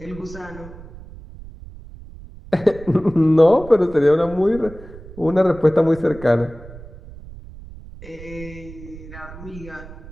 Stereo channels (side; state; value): right; noise; rumble, 16 dB below the sound